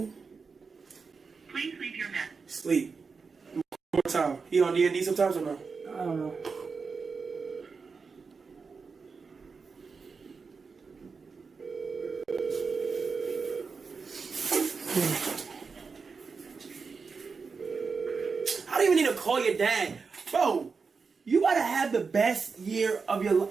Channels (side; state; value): left; quieter; 5.0 dB